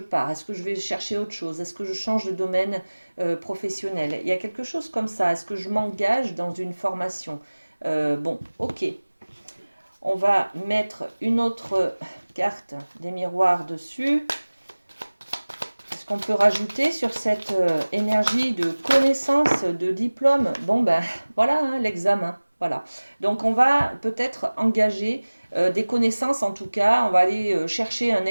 Est-ce que je vais chercher autre chose? Est-ce que je change de domaine professionnel? Il y a quelque chose comme ça. Est-ce que je m'engage dans une formation? Bon, ok. On va mettre une autre carte des miroirs dessus. Est-ce qu'on peut rajouter sur cette énergie de connaissance, de diplôme? Bon, ben voilà, hein, l'examen. Voilà. Donc, on va peut-être engager des connaissances, en tout cas. On va aller chercher un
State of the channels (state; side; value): inverted; both; correlation -1.00